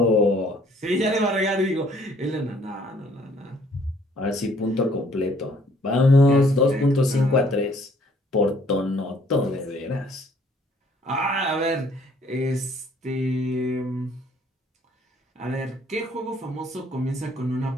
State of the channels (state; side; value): normal; both; correlation 0.61